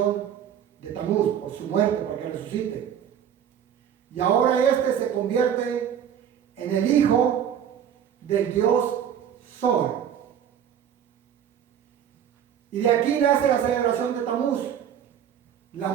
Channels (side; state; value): left; quieter; 9.1 dB